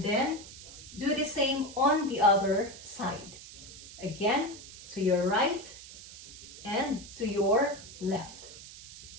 then, do the same on the other side. Again, to your right and to your left.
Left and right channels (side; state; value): right; noise; hiss, 15 dB below the sound